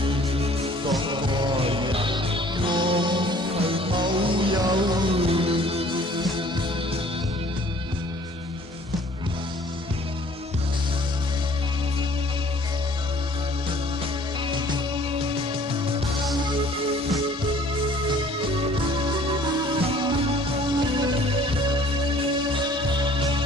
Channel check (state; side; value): normal; both; correlation 0.54